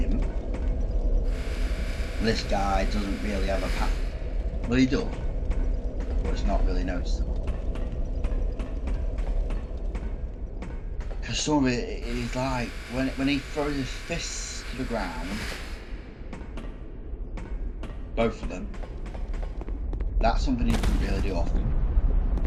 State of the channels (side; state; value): both; identical; correlation 1.00